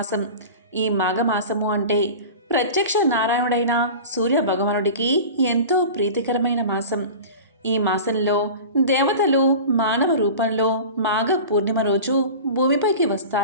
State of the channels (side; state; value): both; inverted; correlation -0.35